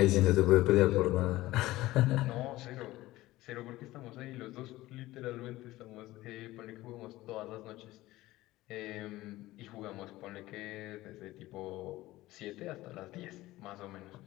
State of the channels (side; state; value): right; quieter; 17.4 dB